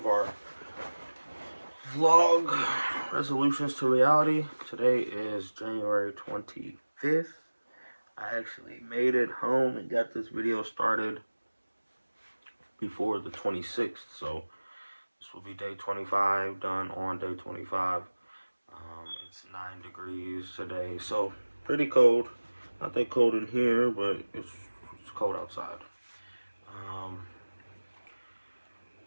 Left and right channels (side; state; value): both; inverted; correlation -1.00